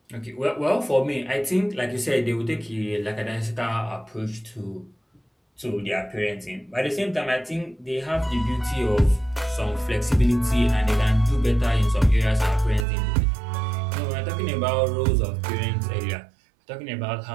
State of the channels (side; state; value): left; drops out; at 12.9 s